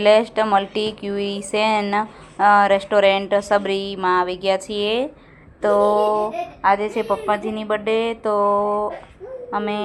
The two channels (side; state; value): both; identical; correlation 1.00